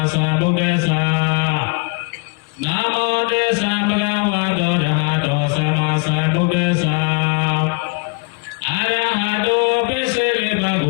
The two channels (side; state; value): right; quieter; 32.9 dB